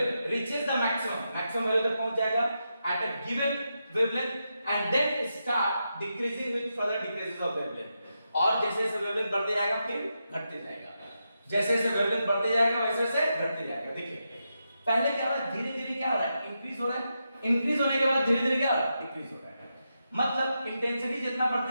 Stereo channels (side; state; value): both; inverted; correlation -0.86